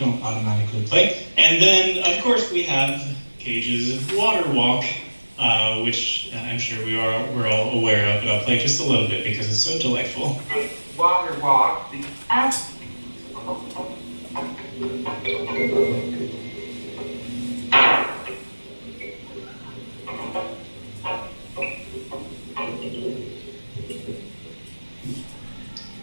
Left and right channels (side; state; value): both; inverted; correlation -1.00